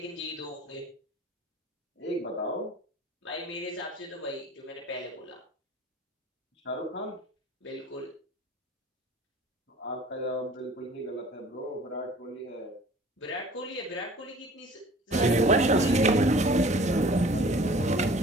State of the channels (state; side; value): normal; both; correlation 0.48